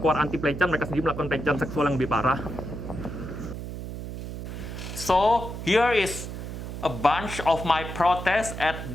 anti pelecehan, mereka sendiri melakukan pelecehan seksual yang lebih parah. So here is a bunch of my protests at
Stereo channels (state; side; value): noise; right; hum, 8 dB below the sound